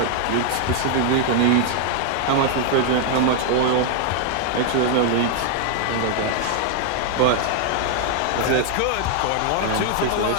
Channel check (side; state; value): both; different; correlation 0.00